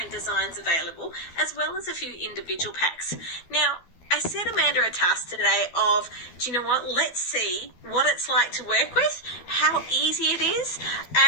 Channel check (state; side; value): late; right; 12 ms